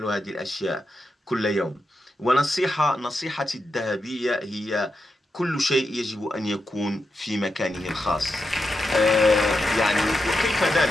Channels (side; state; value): both; normal; correlation 0.87